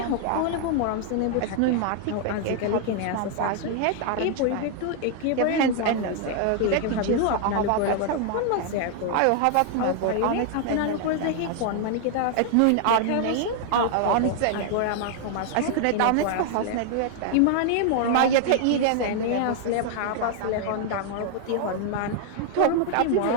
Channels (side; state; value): both; different; correlation 0.00